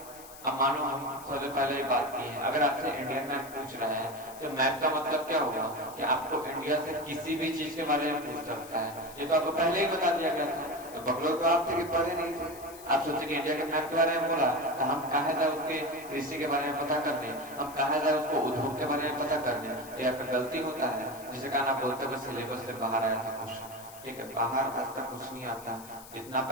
अब मानो हम सबसे पहले ही बात की है, अगर आपसे इंडियन मैप पूछ रहा है तो मैप का मतलब क्या होगा कि आपको इंडिया से किसी भी चीज के बारे में पूछ सकता है। ये तो आपको पहले ही बता दिया गया था। तो बकलोग तो आप थे कि पढ़े नहीं थे, आप सोचे कि इंडिया के मैप के बारे में बोला तो हम कहा जाए उसके कृषि के बारे में पता करने, हम कहा जाए उसको उद्योग के बारे में पता करने। ये आपका गलती होता है, जिसे कारण आप बोलते हो सिलेबस से बाहर आया था क्वेश्चन। ठीक है, बाहर आज तक कुछ नहीं आता जितना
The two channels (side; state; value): left; noise; hiss, 18 dB below the sound